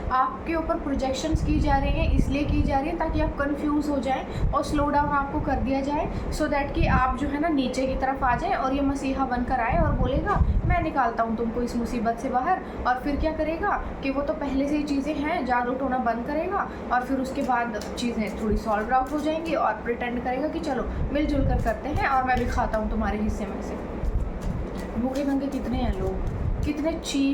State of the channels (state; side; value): identical; both; correlation 1.00